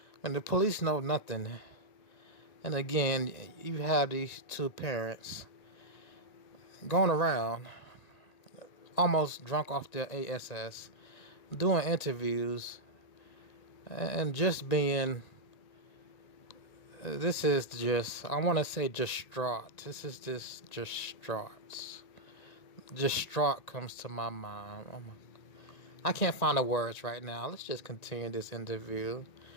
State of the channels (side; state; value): right; late; 1.8 ms